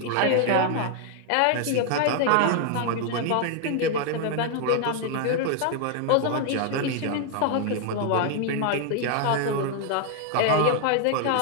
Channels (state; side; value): different; both; correlation 0.00